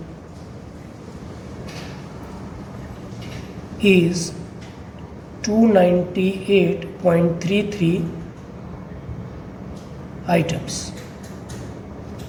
is 298.33 items.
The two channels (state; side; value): identical; both; correlation 1.00